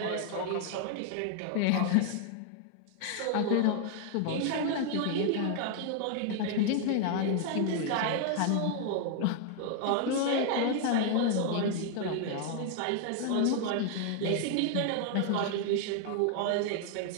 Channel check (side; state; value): both; different; correlation 0.00